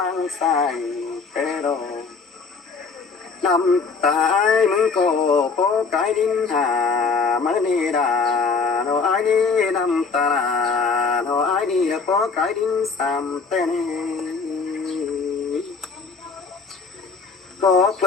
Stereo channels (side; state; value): right; quieter; 4.8 dB